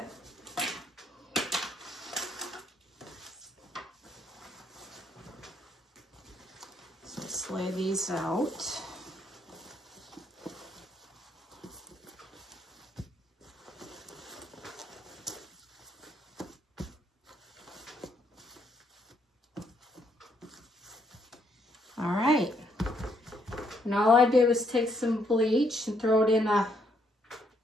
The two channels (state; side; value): normal; both; correlation 0.72